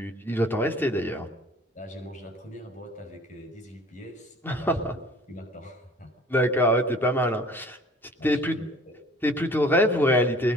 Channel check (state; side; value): normal; both; correlation 0.50